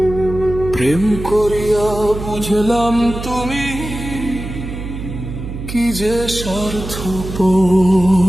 প্রেম করিয়া বুঝলাম তুমি কি যে স্বার্থপর।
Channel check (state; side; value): noise; right; hum, 8 dB below the sound